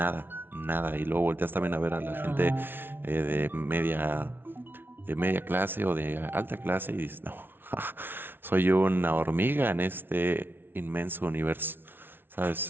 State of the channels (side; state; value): left; late; 0.10 ms